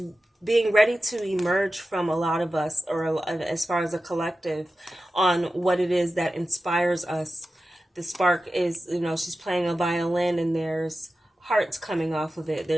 being ready to emerge from a lot of us, or as far as a collective, on what it is that inspires us. The spark is, you know, she's playing a violin and there's hearts coming off of it.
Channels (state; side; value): normal; both; correlation 0.93